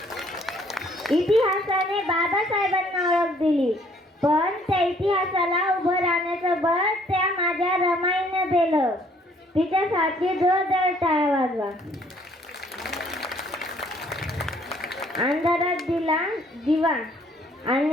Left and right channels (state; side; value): normal; both; correlation 0.62